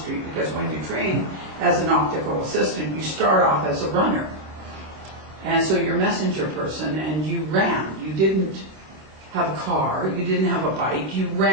because when you train as an optical assistant, you start off as a runner. And so you're a messenger person, and you ran. You didn't have a car, you didn't have a bike, you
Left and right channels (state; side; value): late; left; 27 ms